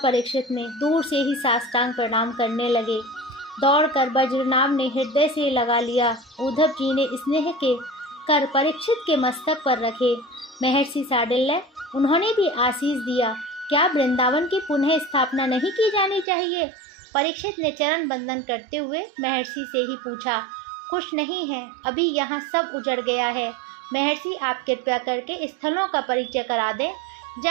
ने, दूर से ही साष्टांग प्रणाम करने लगे। दौड़कर बज्रनाभ ने हृदय से लगा लिया। उद्धव जी ने स्नेह के कर परीक्षित के मस्तक पर रखे। महर्षि शांडिल्य, उन्होंने भी आशीष दिया। क्या वृंदावन की पुनः स्थापना नहीं की जानी चाहिए? परीक्षित ने चरण बंदन करते हुए महर्षि से ही पूछा। कुछ नहीं है, अभी यहाँ सब उजड़ गया है। महर्षि, आप कृपया करके स्थलों का परिचय करा दें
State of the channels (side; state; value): left; drops out; at 16.2 s